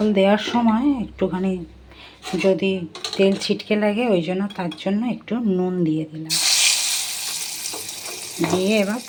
দেওয়ার সময় একটুখানি যদি তেল ছিটকে লাগে, ওই জন্য তার জন্য একটু নুন দিয়ে দিলাম। দিয়ে এবার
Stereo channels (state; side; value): identical; both; correlation 1.00